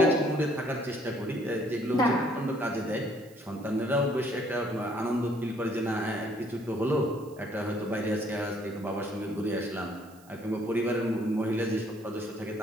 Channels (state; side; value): noise; right; hiss, 26 dB below the sound